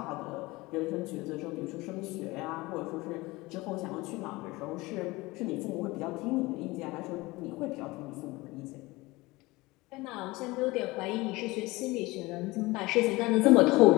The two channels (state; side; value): quieter; right; 21.6 dB